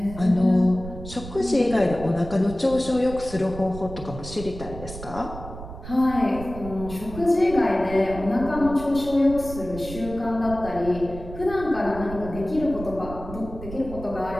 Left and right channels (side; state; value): right; noise; rumble, 12 dB below the sound